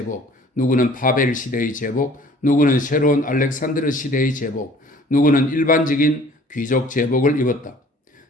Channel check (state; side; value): normal; both; correlation 0.52